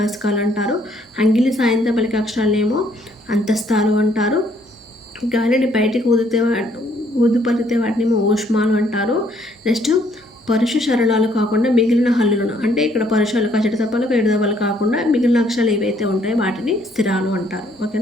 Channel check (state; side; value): normal; both; correlation 0.66